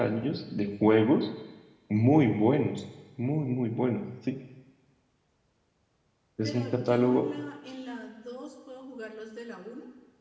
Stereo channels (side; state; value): both; identical; correlation 1.00